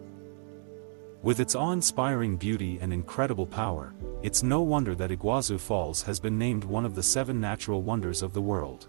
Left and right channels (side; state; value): left; silent; 58 dB below the other